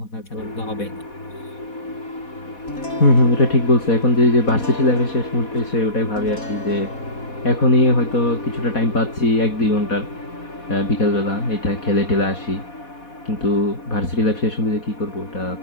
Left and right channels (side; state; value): right; late; 4.1 ms